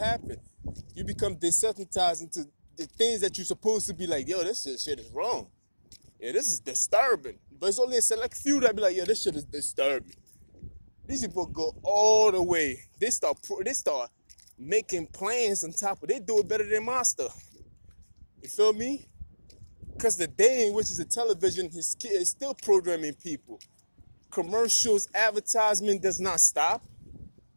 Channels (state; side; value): inverted; both; correlation -1.00